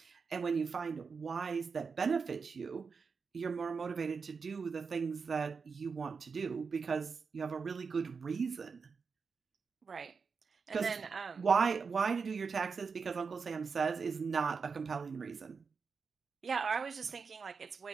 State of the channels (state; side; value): quieter; left; 5.3 dB